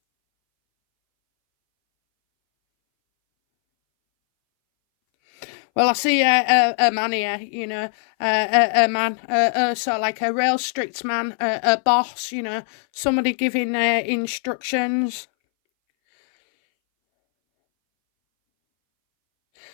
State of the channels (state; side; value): silent; right; 62 dB below the other